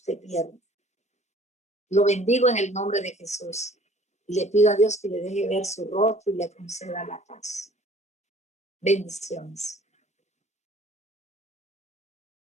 pierde. Lo bendigo en el nombre de Jesús. Y le pido a Dios que le deje ver su rostro y le conceda la paz. Bendiciones.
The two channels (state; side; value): normal; both; correlation 0.52